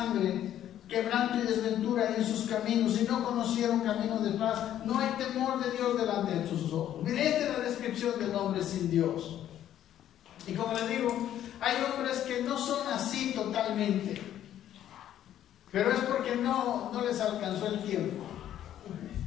Quebranto y desventura en sus caminos, y no conocieron camino de paz. No hay temor de Dios delante de sus ojos. Mire, esta es la descripción del hombre sin Dios. Y como les digo, hay hombres que no son así totalmente, pero es porque no les alcanzó el tiempo.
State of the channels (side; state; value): right; quieter; 11.3 dB